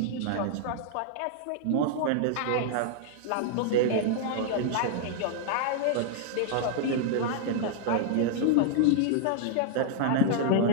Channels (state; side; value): different; both; correlation 0.00